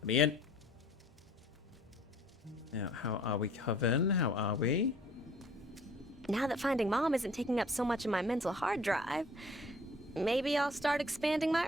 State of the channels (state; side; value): noise; right; hum, 30 dB below the sound